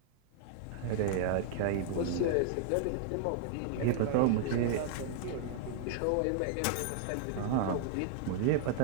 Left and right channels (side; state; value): both; different; correlation -0.01